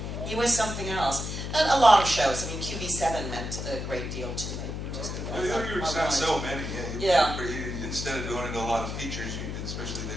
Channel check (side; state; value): left; noise; hum, 5 dB below the sound